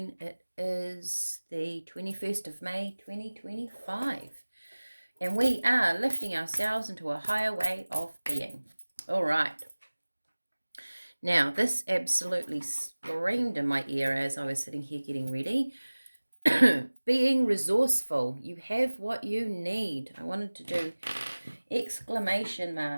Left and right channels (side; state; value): both; inverted; correlation -1.00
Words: It is the 21st of May, 2025, and we are lifting ourselves into a higher way of being. All right. Now, this absolutely screamed in my ear as I was sitting here getting ready. Being resourceful. You have what you need. I wanted to do exclamation